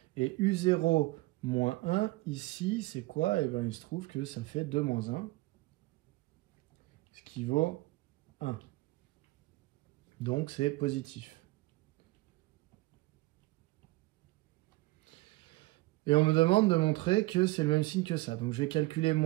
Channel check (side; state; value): left; quieter; 20.6 dB